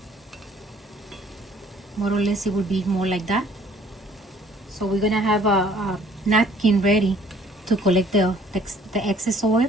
more or less it will be more like that. So we're gonna have a napkin ready to collect the excess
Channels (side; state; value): both; normal; correlation 0.58